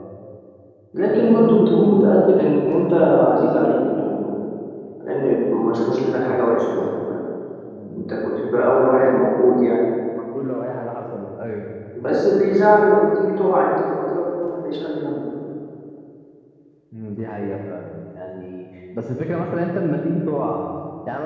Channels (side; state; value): both; identical; correlation 1.00